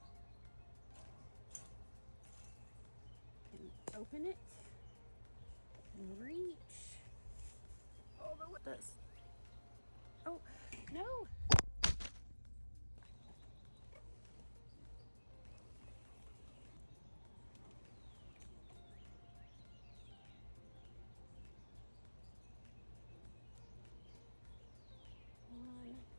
And open it and reach. Over with this. Oh, no. One.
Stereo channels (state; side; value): inverted; both; correlation -1.00